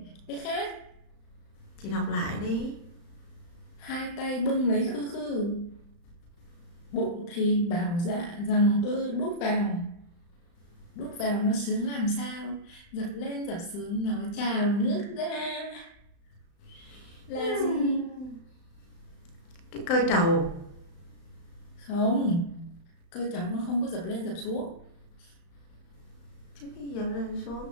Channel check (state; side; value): late; right; 35 ms